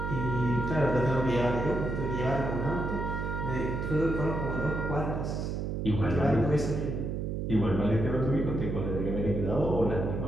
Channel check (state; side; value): noise; right; hum, 2 dB below the sound